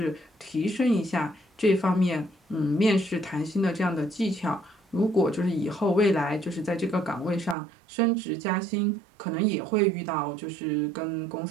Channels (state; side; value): drops out; left; at 7.6 s